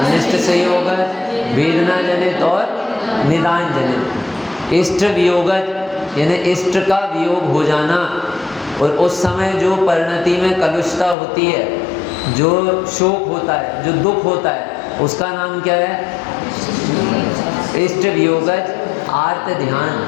संयोग, वेदना जनित और निदान जनित। इष्ट वियोग यानी इष्ट का वियोग हो जाना, और उस समय जो परिणति में कलुषता होती है, जो शोक होता है, जो दुख होता है, उसका नाम क्या है? इष्ट वियोग आर्त ध्यान।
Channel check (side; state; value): right; drops out; at 11.2 s